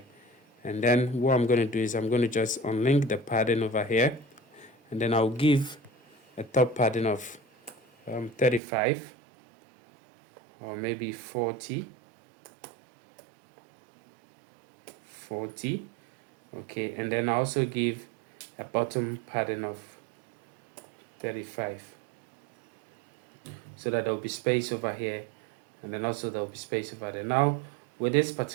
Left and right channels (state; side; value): drops out; left; at 8.6 s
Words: And then what I'm going to do is I'm going to just unlink the padding over here, and then I'll give a top padding of 35 or maybe 40, okay. And then I also give a bottom padding of 35 so that there will be space over here, and then also there will be space over there. Now with this